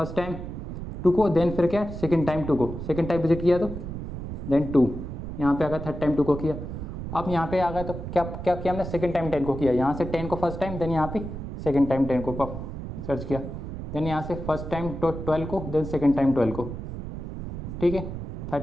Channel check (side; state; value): right; noise; rumble, 7 dB below the sound